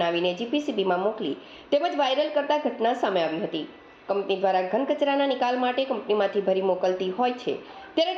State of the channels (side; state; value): both; identical; correlation 1.00